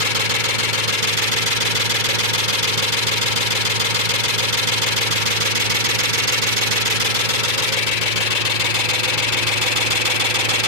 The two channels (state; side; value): late; left; 2.2 ms